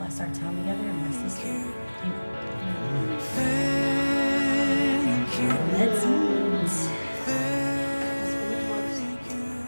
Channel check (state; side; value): inverted; both; correlation -1.00